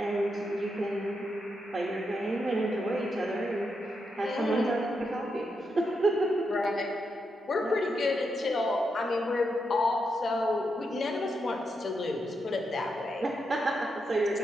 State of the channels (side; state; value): both; normal; correlation 0.83